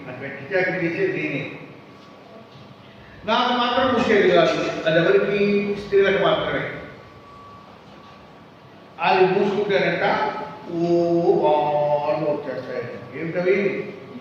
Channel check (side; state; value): both; identical; correlation 1.00